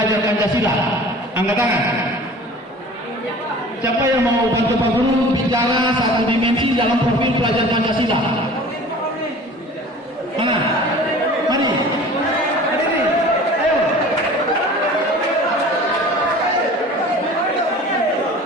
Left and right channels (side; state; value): both; normal; correlation 0.43